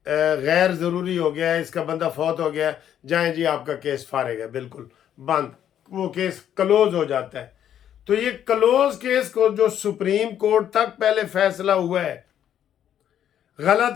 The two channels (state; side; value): quieter; right; 10.1 dB